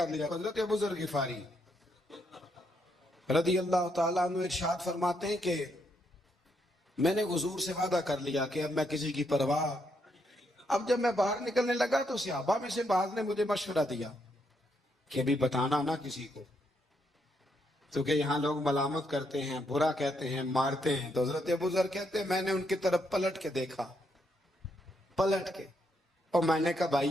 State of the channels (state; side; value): normal; both; correlation 0.77